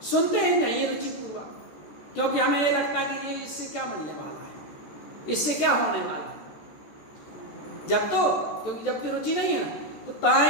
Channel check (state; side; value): late; right; 14 ms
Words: सुनते ही नहीं रुचिपूर्वक, क्योंकि हमें ये लगता है कि ये इससे क्या मिलने वाला है, इससे क्या होने वाला है। क्योंकि जब की रुचि नहीं है ना, तो